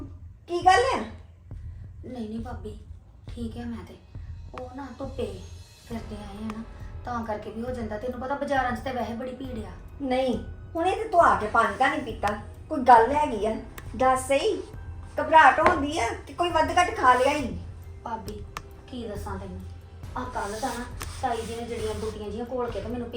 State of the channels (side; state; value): both; identical; correlation 1.00